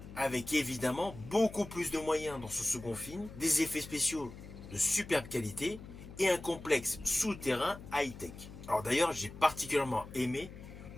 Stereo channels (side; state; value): left; noise; hum, 14 dB below the sound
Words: Avec évidemment beaucoup plus de moyens dans ce second film, des effets spéciaux de superbe qualité et un complexe souterrain high-tech. Alors d'ailleurs, j'ai particulièrement aimé